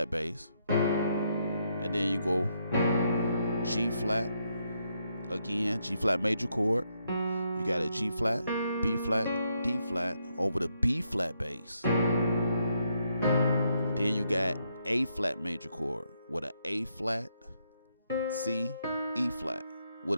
bass, and then you go G flat again, G flat major chord. You got a G flat, B flat, D flat over the B flat bass. Then you got A flat major chord with an A flat, C, E flat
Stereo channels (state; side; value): inverted; both; correlation -0.77